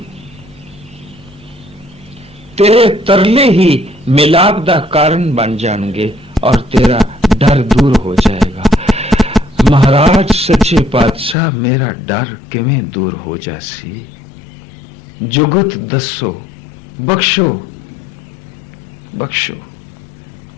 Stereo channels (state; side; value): drops out; right; at 11.4 s